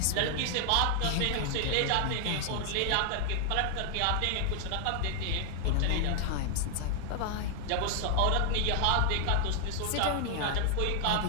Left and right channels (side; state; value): both; different; correlation 0.00